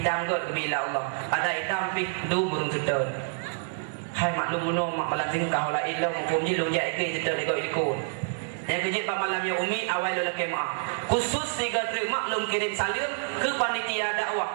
kot kebila Allah. Ada hitam pi du burung sedon. Hai maklum muno mak malam sing kau la ilau hukum ji long jai ke sedon iko ikut. Yang kejip pak malam ya umi awal lo laki maaf. Khusus tiga terima maklum kirim salim ke panitia dakwah.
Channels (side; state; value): left; silent; digital silence